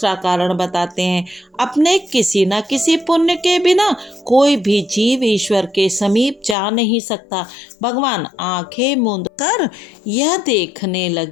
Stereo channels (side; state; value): right; drops out; at 6.6 s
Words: कारण बताते हैं। अपने किसी न किसी पुण्य के बिना कोई भी जीव ईश्वर के समीप जा नहीं सकता। भगवान आंखें मूंद कर यह देखने